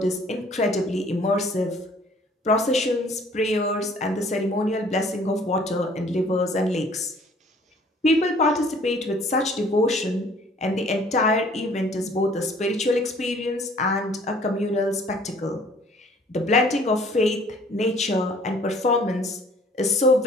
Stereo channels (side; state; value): both; normal; correlation 0.56